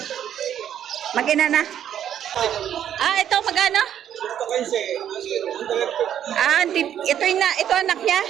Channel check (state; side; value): quieter; left; 10.1 dB